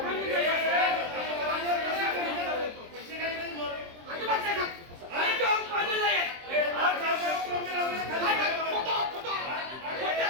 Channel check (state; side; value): late; left; 23 ms